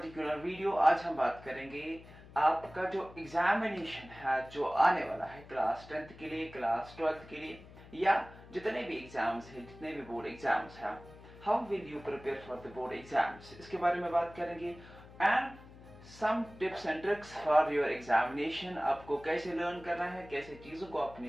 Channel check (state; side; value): noise; left; hum, 19 dB below the sound